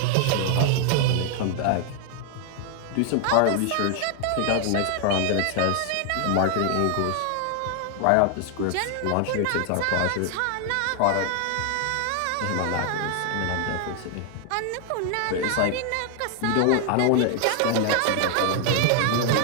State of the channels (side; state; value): both; different; correlation 0.00